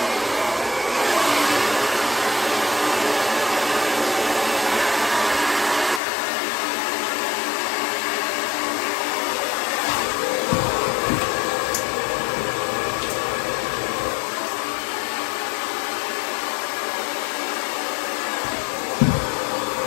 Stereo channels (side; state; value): right; drops out; at 6.0 s